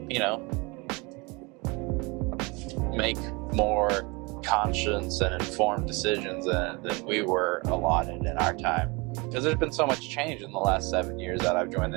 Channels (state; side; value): quieter; left; 27.5 dB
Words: make more conscious and informed decisions than we were allotted in our time. Because there's been so much change in the last 7 years that I've joined